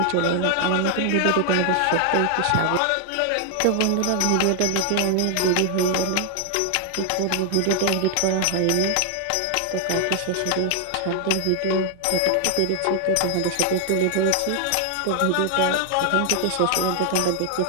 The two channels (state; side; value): different; both; correlation 0.00